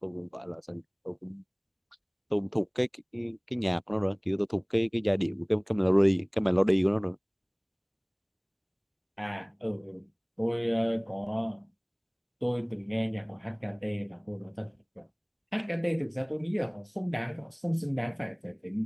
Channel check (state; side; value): identical; both; correlation 1.00